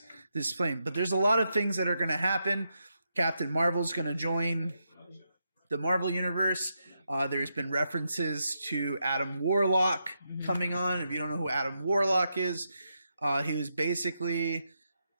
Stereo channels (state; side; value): inverted; both; correlation -0.83